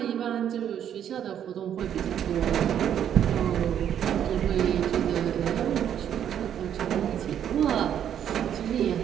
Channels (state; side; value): quieter; left; 9.6 dB